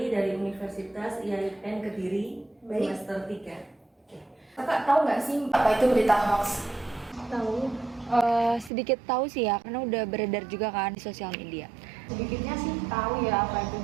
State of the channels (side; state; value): left; drops out; at 8.7 s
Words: dari Universitas IAIN Kediri, Baik. semester 3. Kakak tahu nggak sih Apa itu berita hoax? tahu? Sedikit tahu sih ya, karena udah beredar juga kan di sosial media. Sedikitnya sih tahu ya apa itu